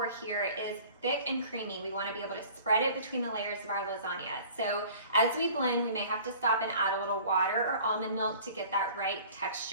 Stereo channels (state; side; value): inverted; both; correlation -0.47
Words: here is thick and creamy. We want to be able to spread it between the layers of our lasagna. So as we blend, we may have to stop and add a little water or almond milk to get that right